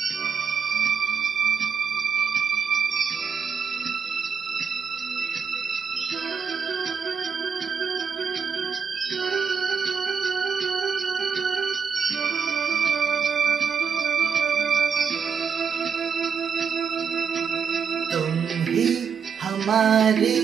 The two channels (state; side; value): quieter; left; 6.4 dB